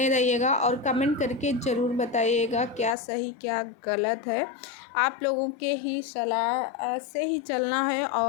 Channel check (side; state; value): right; drops out; at 3.0 s